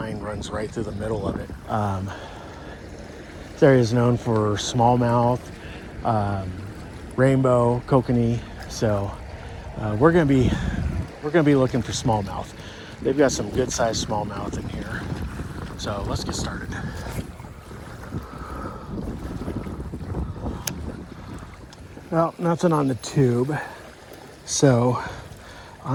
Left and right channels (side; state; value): both; identical; correlation 1.00